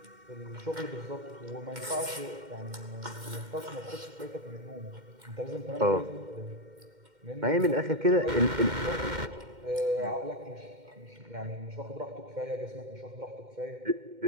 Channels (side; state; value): left; late; 2.1 ms